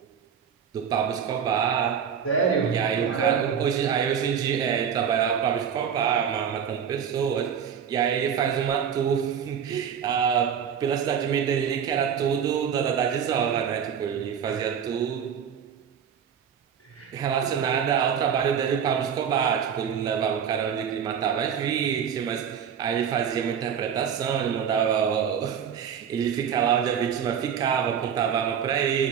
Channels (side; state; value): left; quieter; 7.9 dB